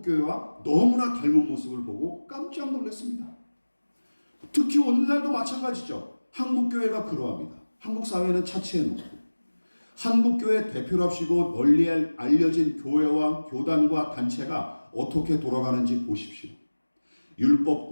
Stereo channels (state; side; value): inverted; both; correlation -1.00